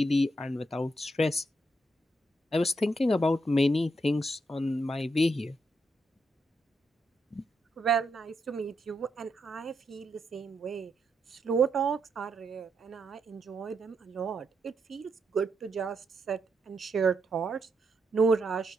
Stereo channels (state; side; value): normal; both; correlation 0.80